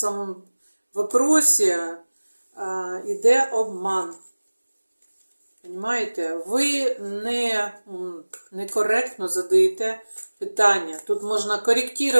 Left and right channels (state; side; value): inverted; both; correlation -1.00